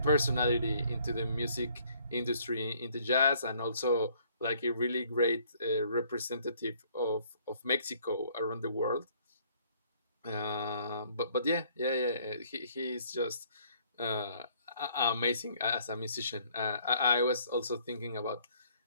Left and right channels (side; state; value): both; inverted; correlation -0.62